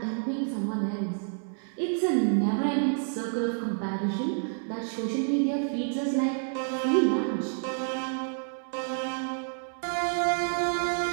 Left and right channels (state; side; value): silent; left; 59 dB below the other